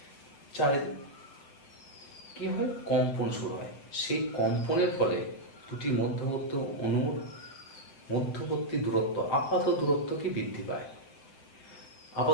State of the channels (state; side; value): late; right; 7.3 ms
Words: কি হয়? কম্পন শুরু হয়। সেই কম্পনের ফলে দুটি মধ্যবর্তী অণুর মধ্যবর্তী দূরত্ব, আপাত দূরত্ব কি বৃদ্ধি পায়?